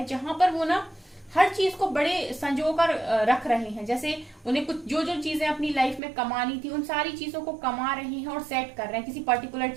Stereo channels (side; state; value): left; drops out; at 6.0 s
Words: जहां पर वो ना हर चीज को बड़े संजो कर रख रहे हैं। जैसे उन्हें कुछ जो जो चीजें अपनी लाइफ में कमानी थी, उन सारी चीजों को कमा रहे हैं और सेट कर रहे हैं किसी पर्टिकुलर